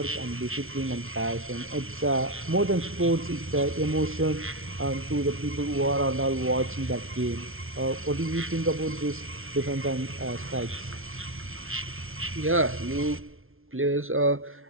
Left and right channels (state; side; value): late; left; 0.61 ms